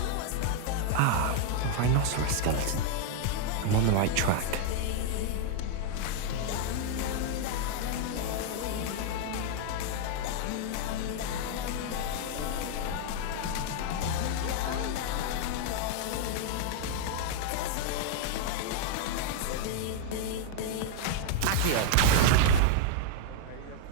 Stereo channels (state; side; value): different; both; correlation 0.00